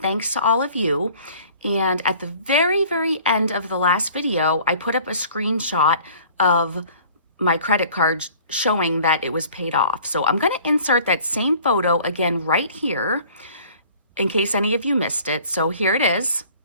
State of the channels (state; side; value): inverted; both; correlation -0.51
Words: thanks to all of you. And at the very end of the last video, I put up a screenshot of my credit card showing that it was paid off. So I'm going to insert that same photo again right here in case any of you missed it. So here it is.